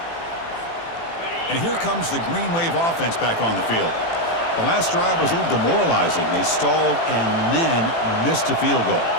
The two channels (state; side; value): late; right; 18 ms